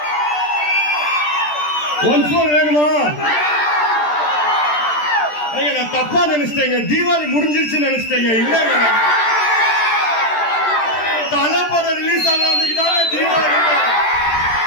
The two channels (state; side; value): late; right; 13 ms